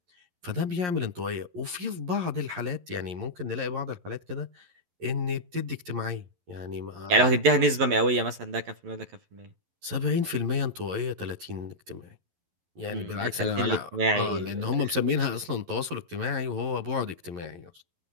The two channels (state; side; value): late; left; 11 ms